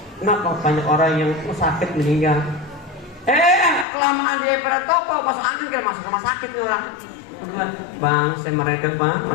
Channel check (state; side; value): drops out; right; at 3.9 s